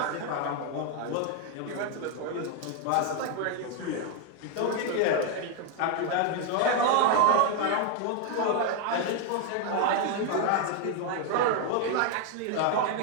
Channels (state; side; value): different; both; correlation 0.00